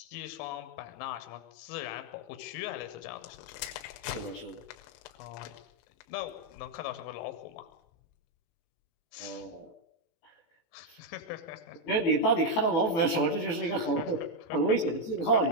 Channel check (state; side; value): late; right; 18 ms